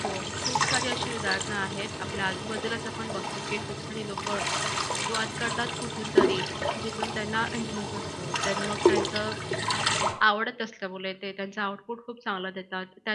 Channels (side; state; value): both; identical; correlation 1.00